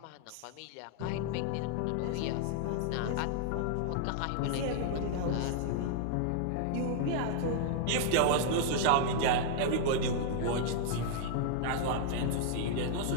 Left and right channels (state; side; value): different; both; correlation -0.01